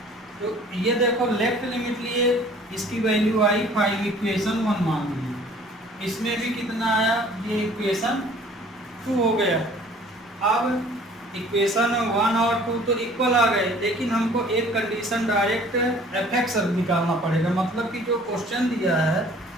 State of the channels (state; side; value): normal; both; correlation 0.52